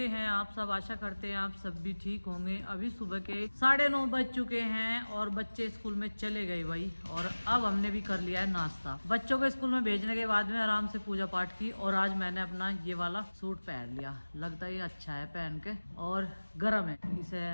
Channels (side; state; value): both; inverted; correlation -1.00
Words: हैं आप सब? आशा करते हैं आप सब भी ठीक होंगे। अभी सुबह के 9:30 बज चुके हैं और बच्चे स्कूल में चले गए भाई। और अब हमने भी कर लिया है नाश्ता। बच्चों को स्कूल में भेजने के बाद में आराम से पूजा पाठ की और आज मैंने अपना ये वाला सूट पहन लिया। लगता है ये अच्छा है पहन के और गर्म है। इसे